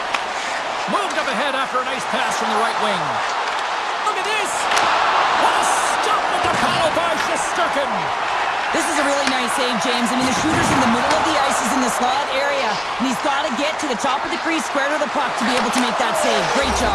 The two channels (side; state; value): both; identical; correlation 1.00